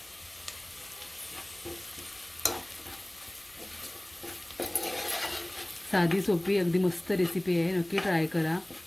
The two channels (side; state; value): left; noise; hum, 29 dB below the sound